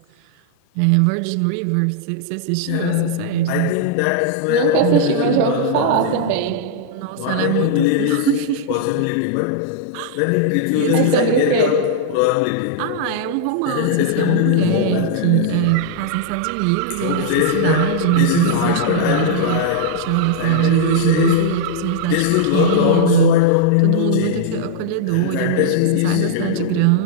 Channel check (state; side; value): different; both; correlation -0.01